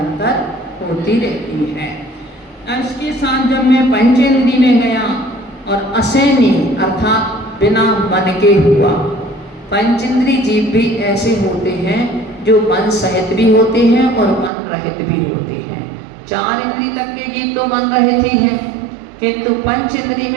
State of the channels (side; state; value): left; drops out; at 14.5 s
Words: होती रहती है। इसके साथ जब मैं पंचेंद्री में गया और असैनी अर्थात बिना मन के हुआ, पंचेंद्री जीव भी ऐसे होते हैं जो मन सहित भी होते हैं और मन रहित भी होते हैं। 4 इंद्री तक के जीव तो मन रहित ही हैं, किंतु पंच इंद्री